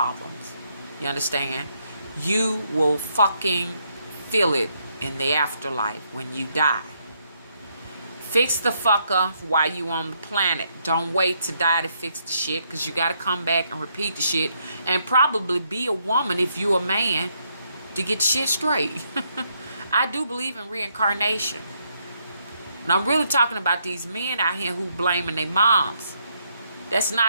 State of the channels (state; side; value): inverted; both; correlation -0.75